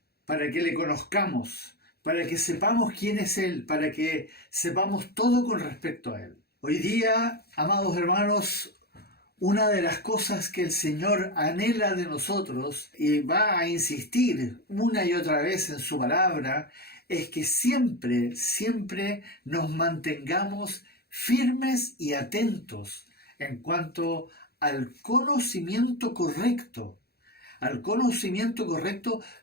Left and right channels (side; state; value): right; late; 0.46 ms